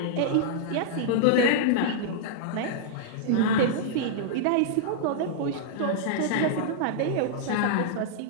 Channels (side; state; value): both; different; correlation -0.02